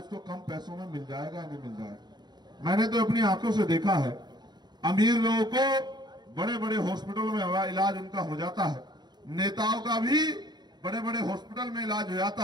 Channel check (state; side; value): late; left; 0.21 ms